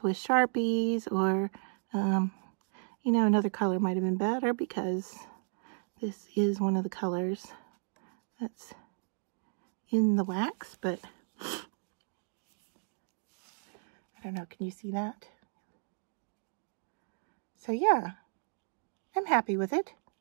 with Sharpies, or you know, another color might have been better because this is one of the colors that's in the wax, but I don't know, can you see that? So yeah, I'm happy with it.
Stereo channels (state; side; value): silent; left; digital silence